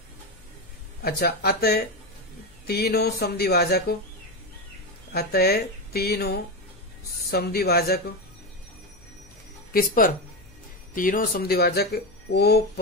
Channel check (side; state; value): left; noise; hum, 26 dB below the sound